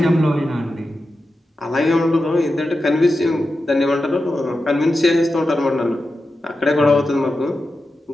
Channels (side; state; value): both; normal; correlation 0.91